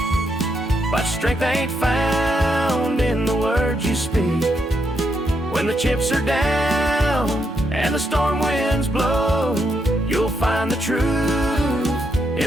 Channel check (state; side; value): normal; both; correlation 0.79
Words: but strength ain't found in the words you speak. When the chips are down and the storm winds blow, you'll find the truth